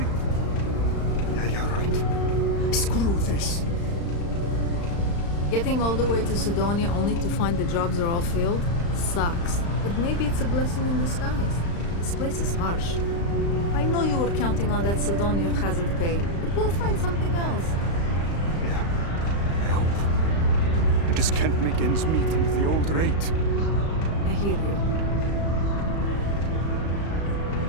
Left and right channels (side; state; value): right; late; 35 ms